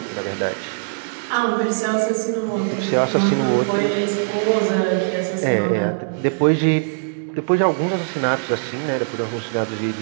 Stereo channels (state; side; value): silent; left; digital silence